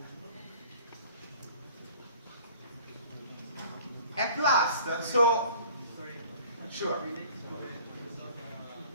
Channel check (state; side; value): inverted; both; correlation -0.49